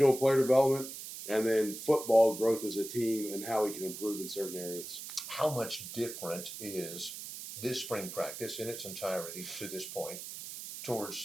player development and then football growth as a team and how we can improve in certain areas. How much different is this spring practice in its entirety to this point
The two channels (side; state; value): right; noise; hiss, 10 dB below the sound